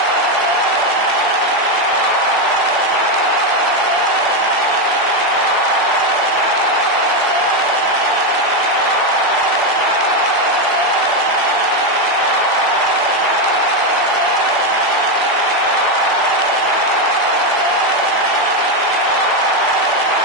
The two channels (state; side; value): normal; both; correlation 0.07